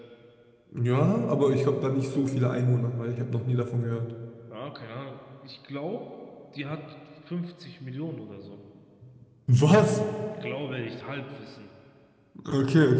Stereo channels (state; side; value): identical; both; correlation 1.00